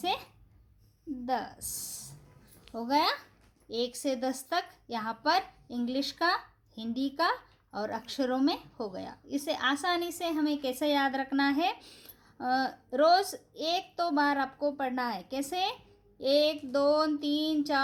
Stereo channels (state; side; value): identical; both; correlation 1.00